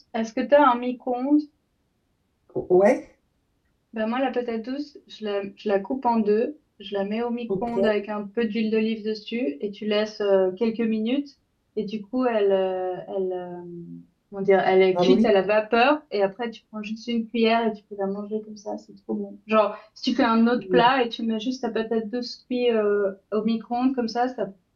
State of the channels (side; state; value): both; identical; correlation 1.00